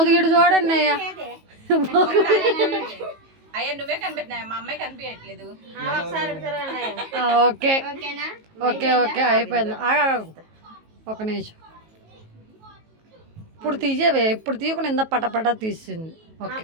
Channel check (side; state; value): left; late; 19 ms